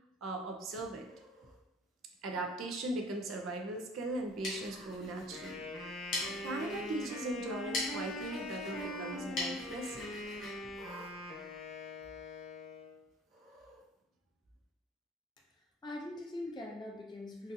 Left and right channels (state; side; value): normal; both; correlation 0.47